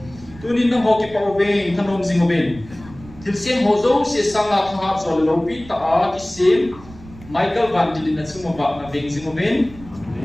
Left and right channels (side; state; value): right; noise; rumble, 19 dB below the sound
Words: tunin na hoki pa obeng thanom sing oben til sem ho zo se sanga tha chol lo pi ta a ki sem Michael van di na chuma ba na beng sing oben